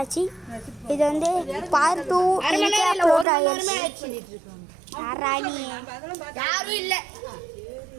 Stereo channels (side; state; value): left; drops out; at 3.2 s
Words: இது வந்து பார்ட் 2 அப்லோட் ஆகிடுச்சு. யாரும் இல்லை.